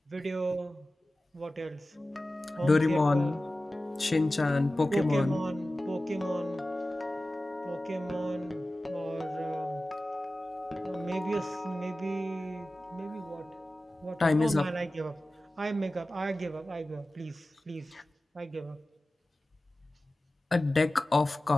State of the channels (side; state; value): both; normal; correlation 0.96